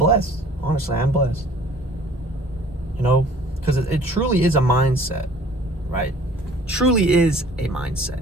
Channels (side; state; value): both; normal; correlation 0.51